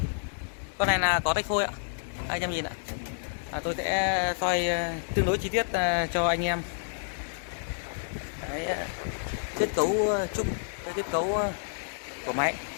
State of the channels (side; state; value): right; silent; digital silence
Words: Con này là có tách phôi ạ. Anh em nhìn ạ. Tôi sẽ soi tương đối chi tiết cho anh em cái kết cấu chung, cái kết cấu của máy.